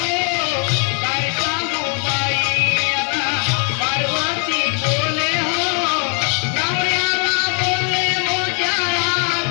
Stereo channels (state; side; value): quieter; right; 39.4 dB